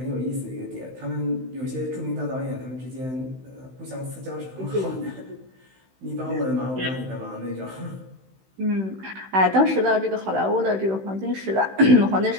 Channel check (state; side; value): late; left; 16 ms